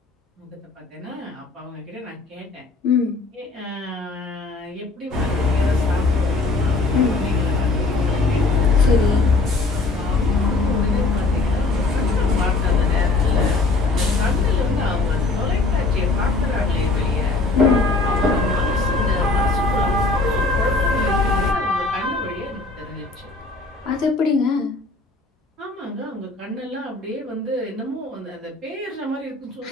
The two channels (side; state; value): right; quieter; 3.4 dB